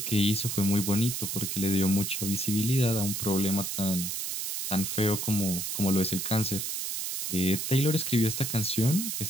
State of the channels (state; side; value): noise; right; hiss, 3 dB below the sound